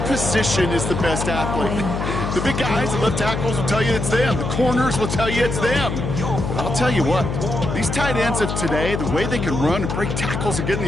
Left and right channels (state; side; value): noise; left; hum, 3 dB below the sound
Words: position is the best athlete. The big guys, the left tackles will tell you it's them. The corners will tell you it's them. But I'll tell you what, these tight ends of today, the way they can run and break tackles and get in